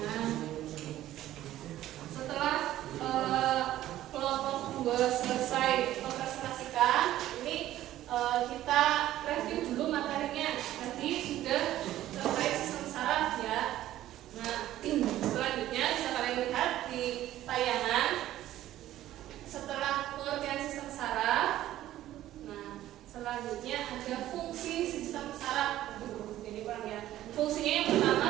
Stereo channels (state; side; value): quieter; left; 13.7 dB